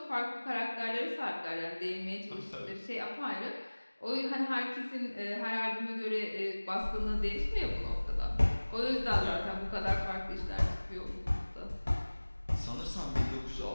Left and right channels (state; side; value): inverted; both; correlation -1.00